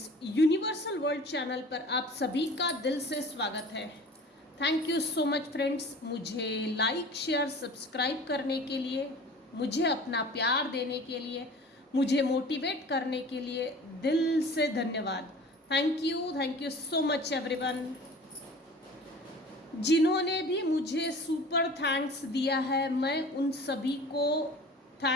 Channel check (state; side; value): normal; both; correlation 0.42